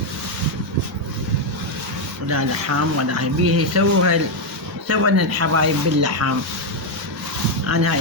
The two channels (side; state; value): both; normal; correlation 0.03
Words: ولا لحم ولا هاي بيها يسووها سوينا الحبايب باللحم. انا